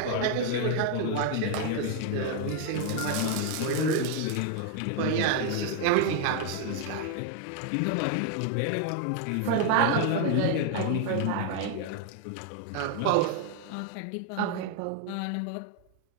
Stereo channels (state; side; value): different; both; correlation 0.00